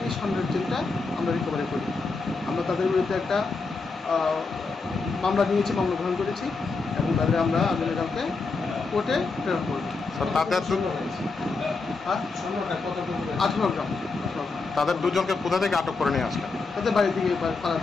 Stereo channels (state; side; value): quieter; right; 4.1 dB